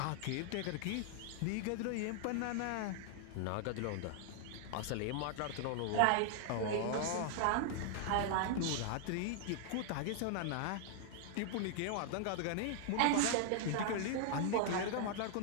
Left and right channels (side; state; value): both; different; correlation 0.00